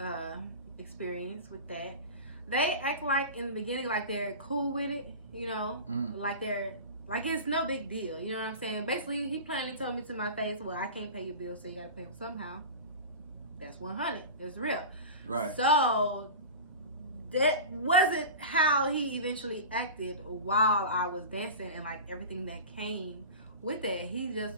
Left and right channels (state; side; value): inverted; both; correlation -0.31